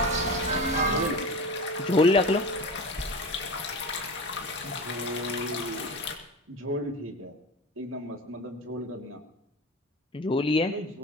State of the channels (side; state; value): both; normal; correlation 0.29